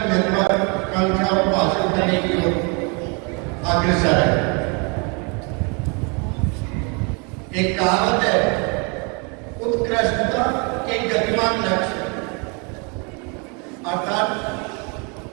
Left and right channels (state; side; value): quieter; left; 33.0 dB